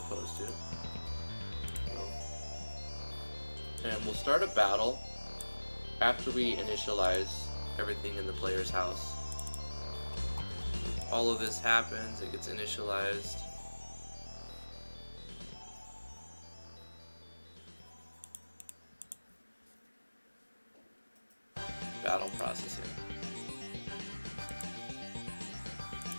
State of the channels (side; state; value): both; inverted; correlation -1.00